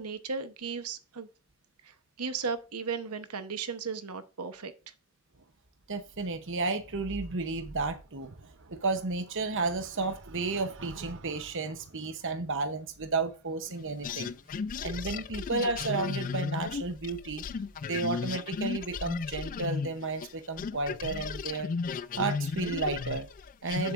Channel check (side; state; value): both; normal; correlation -0.05